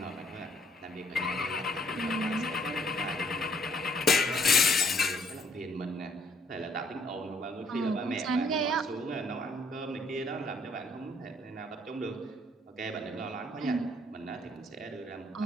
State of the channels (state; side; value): normal; both; correlation 0.64